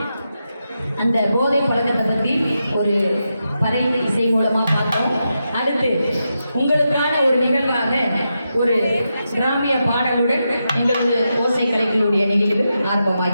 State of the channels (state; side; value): inverted; both; correlation -0.87